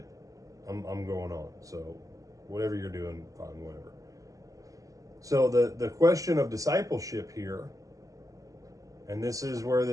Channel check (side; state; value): left; late; 0.16 ms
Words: I'm going on. So whatever you're doing, fine, whatever. So the question of discipleship here, and this is where